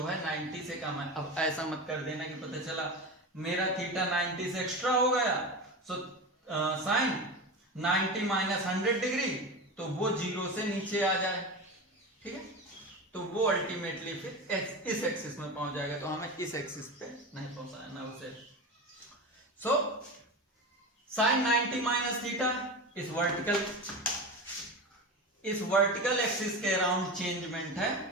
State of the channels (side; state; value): both; normal; correlation 0.25